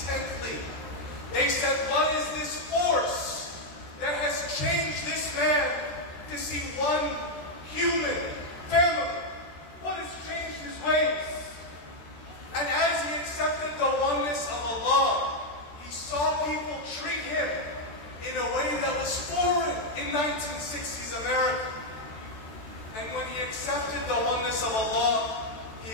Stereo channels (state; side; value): late; right; 13 ms